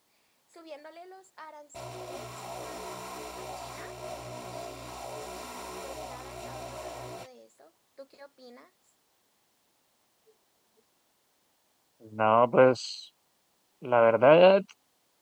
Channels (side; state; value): both; identical; correlation 1.00